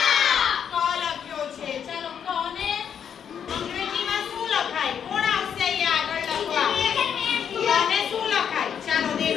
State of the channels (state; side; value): quieter; right; 8.1 dB